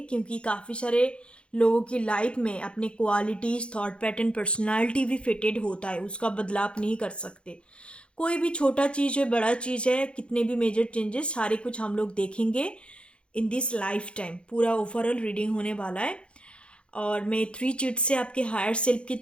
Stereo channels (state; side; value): late; right; 0.057 ms